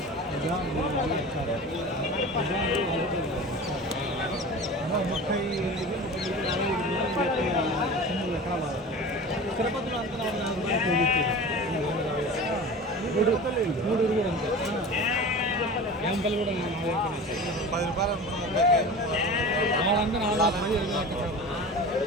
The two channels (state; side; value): normal; both; correlation 0.35